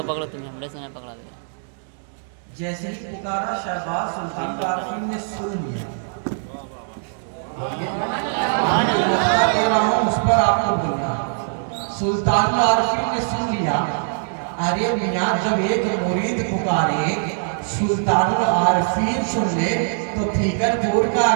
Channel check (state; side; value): silent; left; digital silence